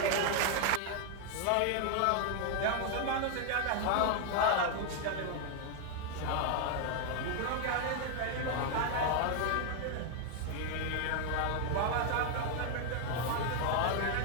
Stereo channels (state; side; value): different; both; correlation 0.00